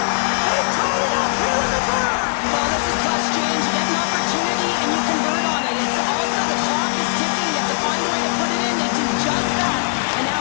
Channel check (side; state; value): right; silent; digital silence